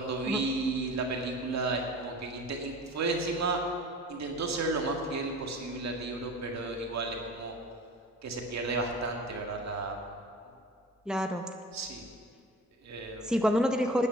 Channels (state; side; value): normal; both; correlation 0.38